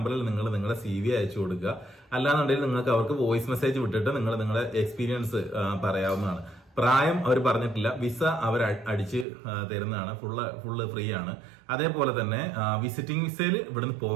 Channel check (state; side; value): drops out; left; at 9.2 s